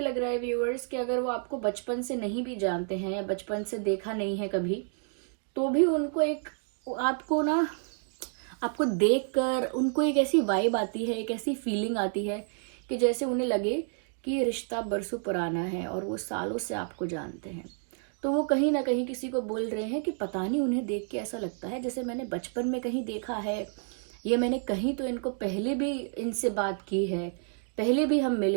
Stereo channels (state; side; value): silent; left; 56 dB below the other